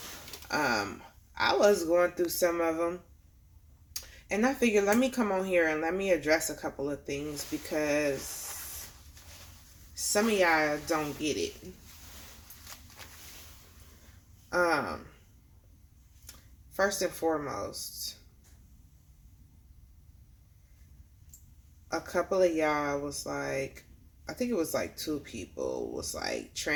I was going through some of them, and I figured let me come on here and let me address a couple of things because some of y'all don't get it. First and foremost, a couple of y'all was like, I think it was like two people was like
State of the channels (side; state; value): both; identical; correlation 1.00